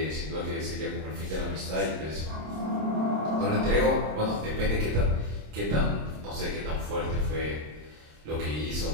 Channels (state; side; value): late; left; 26 ms